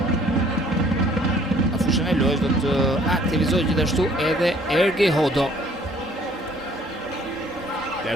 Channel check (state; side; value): normal; both; correlation 0.58